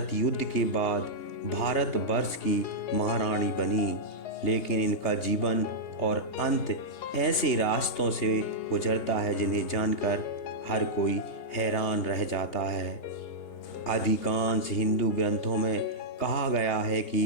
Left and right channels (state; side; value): late; right; 2.8 ms